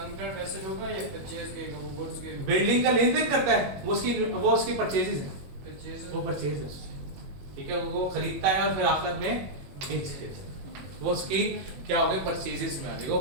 करंट एसेट होगा या परचेज के वो गुड्स के? बिल्डिंग का लेन देन करता है वो उसकी परचेजेस है, परचेज वो परचेज है, ठीक है। वो खरीदता है और फिर आखिर में बेच देता है, वो उसकी क्या हो गई? परचेजेस में आ जाएगा, वो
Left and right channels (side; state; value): left; late; 21 ms